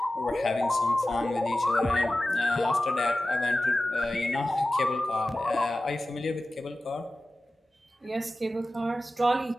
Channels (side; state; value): both; normal; correlation 0.95